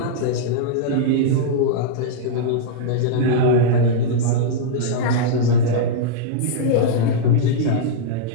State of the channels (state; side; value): different; both; correlation -0.02